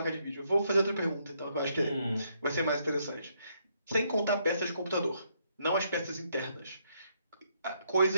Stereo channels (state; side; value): inverted; both; correlation -0.74